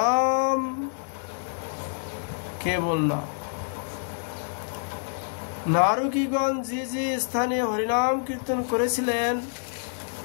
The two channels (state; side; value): silent; right; digital silence